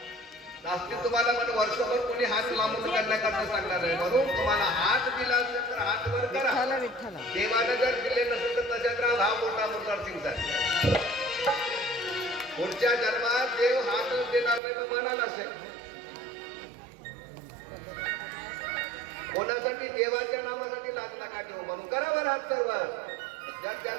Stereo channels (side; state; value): left; drops out; at 14.6 s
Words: जास्ती तुम्हाला म्हणजे वर्षभर कोणी हात लांबून करण्याकरता सांगणार आहे. म्हणून तुम्हाला हात दिला असेल तर हात वर करा. देवानं जर दिले नसेल तर त्याच्यात राहा. हा मोठा मोठा सिंगचा पुढच्या जन्मात देव हात देणार नाही म्हणाला असेल. कोणासाठी? देवाच्या नामासाठी लाज नका ठेवू. म्हणून करा वर हात सर्व. जर